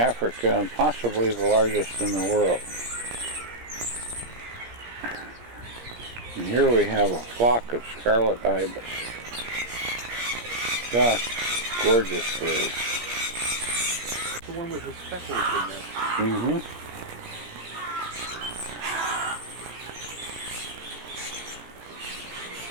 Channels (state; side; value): late; left; 17 ms